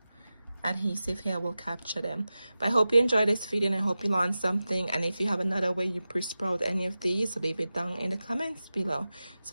adhesive here will capture them. But I hope you enjoyed this video and I hope you learned something. And if you have another way you pre-sprout any of these, leave it down in the comments below.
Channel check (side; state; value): both; inverted; correlation -0.94